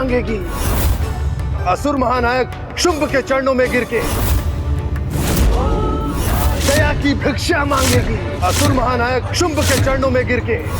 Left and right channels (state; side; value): identical; both; correlation 1.00